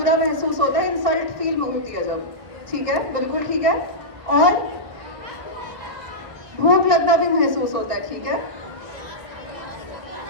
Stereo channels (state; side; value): late; left; 1.6 ms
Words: महसूस होता है, इंसल्ट फील होती है जब, ठीक है, बिल्कुल ठीक है। और भूख लगना भी महसूस होता है, ठीक है।